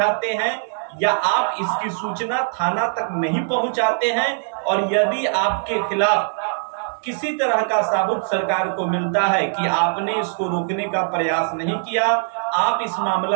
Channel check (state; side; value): silent; left; digital silence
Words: हैं या आप इसकी सूचना थाना तक नहीं पहुंचाते हैं और यदि आपके खिलाफ किसी तरह का साबुत सरकार को मिलता है कि आपने इसको रोकने का प्रयास नहीं किया, आप इस